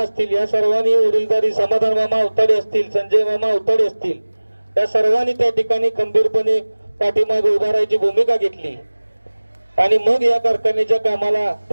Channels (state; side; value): inverted; both; correlation -1.00